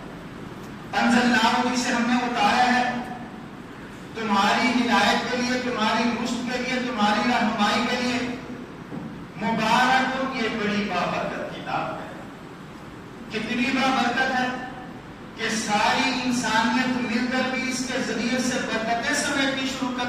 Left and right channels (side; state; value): both; identical; correlation 1.00